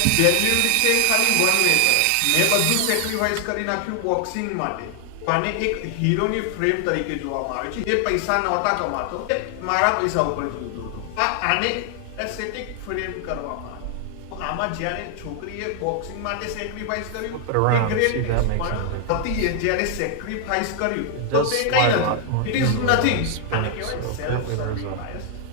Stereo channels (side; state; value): both; different; correlation 0.00